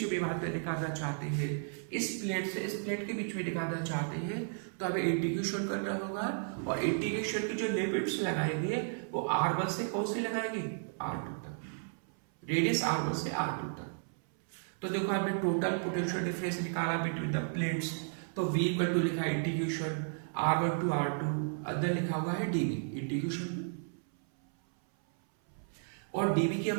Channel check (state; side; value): silent; left; 55 dB below the other